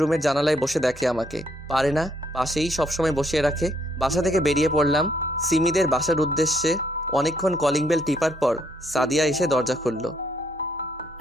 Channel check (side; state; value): both; normal; correlation 0.70